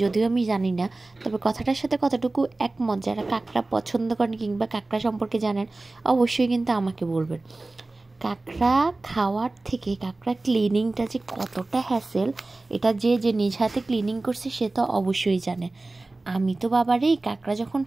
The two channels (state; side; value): quieter; left; 3.1 dB